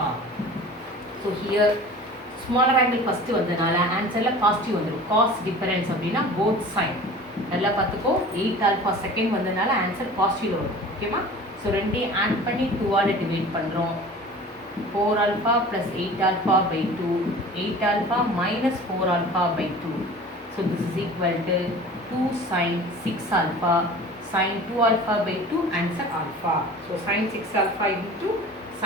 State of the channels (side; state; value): both; normal; correlation 0.41